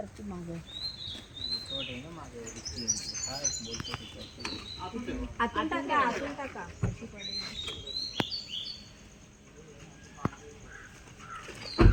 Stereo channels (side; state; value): both; identical; correlation 1.00